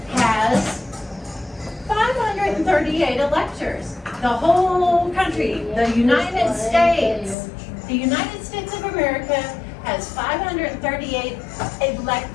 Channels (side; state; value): right; drops out; at 7.4 s